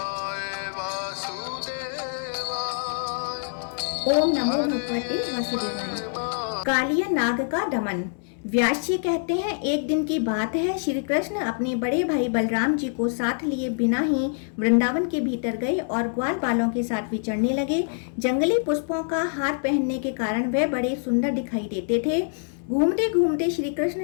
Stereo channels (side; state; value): right; silent; digital silence